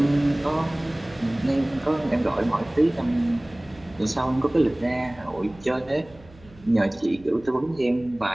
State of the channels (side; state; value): right; noise; hum, 24 dB below the sound